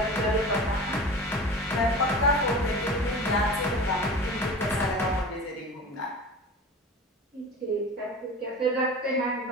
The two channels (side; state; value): both; normal; correlation 0.35